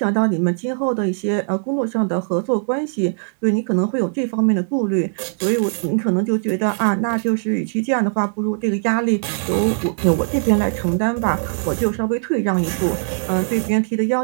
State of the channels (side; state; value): left; silent; digital silence